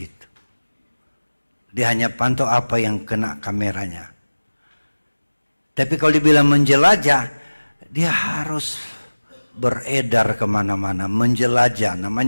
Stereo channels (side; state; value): both; inverted; correlation -1.00